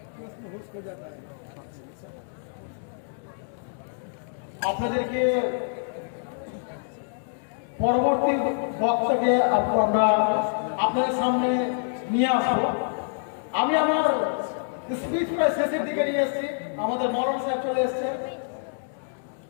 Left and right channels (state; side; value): silent; right; digital silence